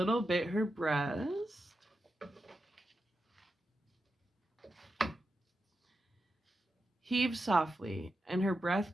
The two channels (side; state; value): both; normal; correlation 0.89